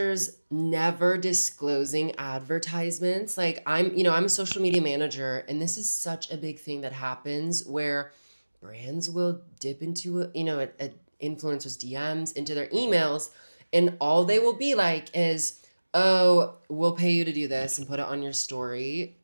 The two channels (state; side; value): inverted; both; correlation -1.00